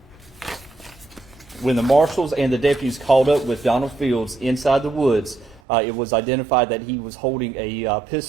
When the marshals and the deputies called up with Donald Fields inside the woods, it was identified that he was holding a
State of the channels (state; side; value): drops out; left; at 5.6 s